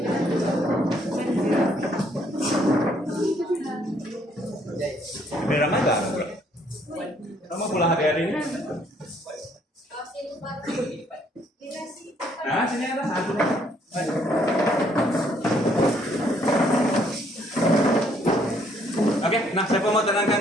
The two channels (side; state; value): both; normal; correlation 0.67